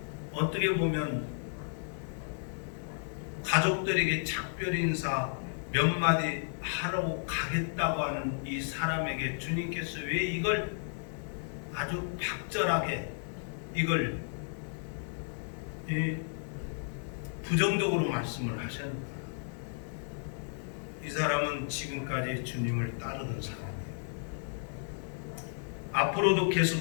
어떻게 보면 가족들에게 작별 인사 몇 마디 하러 가겠다고 하는 이 사람에게 주님께서 왜 이걸 아주 박절하게 이걸 부정적으로 말씀을 하셨는가? 이 사람은 지금까지 주님을 따르던 사람이에요. 앞으로도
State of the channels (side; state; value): right; silent; 56 dB below the other